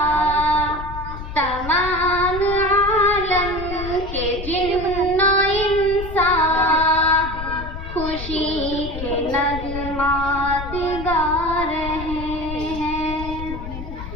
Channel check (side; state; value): left; noise; rumble, 9 dB below the sound